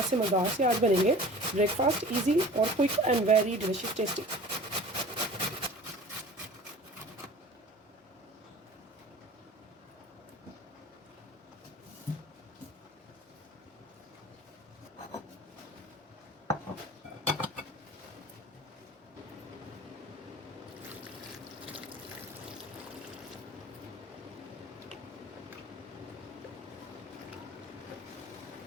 से मज़ेदार से आज बनेंगे ब्रेकफास्ट, ईजी और quick and very delicious tasty.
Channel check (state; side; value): normal; both; correlation 0.43